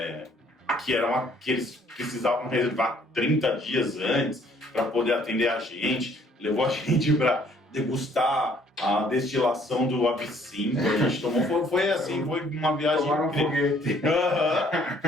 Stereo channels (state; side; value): normal; both; correlation 0.62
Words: que eles precisavam reservar 30 dias antes para poder atender a gente. Levou a gente para degustar a destilação do absinto. A gente tomou, foi assim, foi uma viagem incrível.